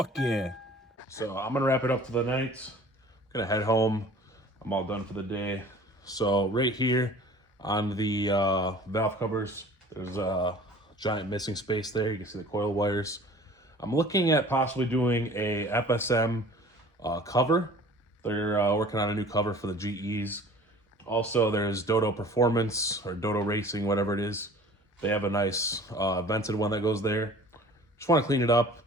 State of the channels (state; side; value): normal; both; correlation 0.47